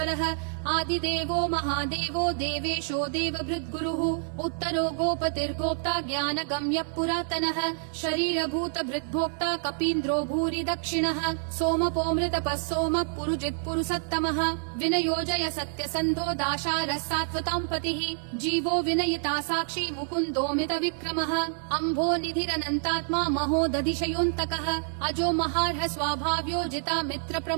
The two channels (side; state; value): left; silent; digital silence